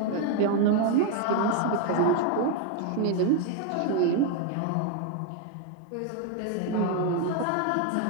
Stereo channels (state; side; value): different; both; correlation 0.01